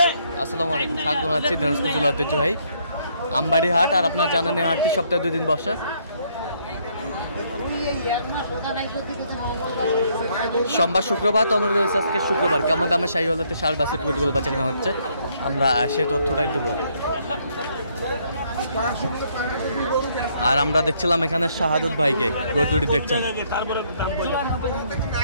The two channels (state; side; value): inverted; both; correlation -0.69